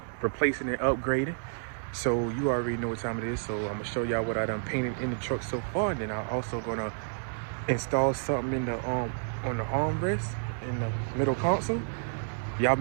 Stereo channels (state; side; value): silent; left; digital silence